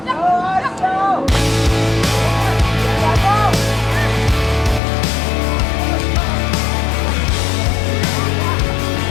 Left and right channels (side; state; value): right; drops out; at 4.8 s